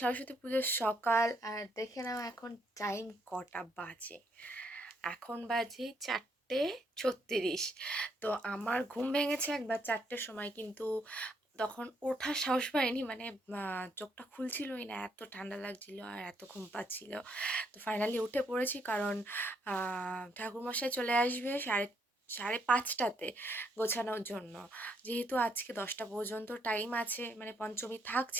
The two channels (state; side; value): normal; both; correlation 0.72